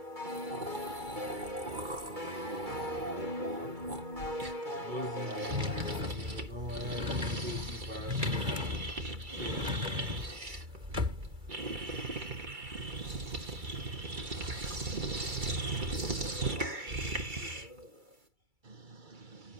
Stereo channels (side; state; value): left; late; 2.3 ms